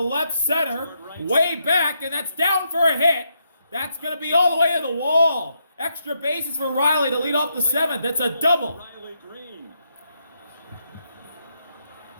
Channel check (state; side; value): inverted; both; correlation -0.79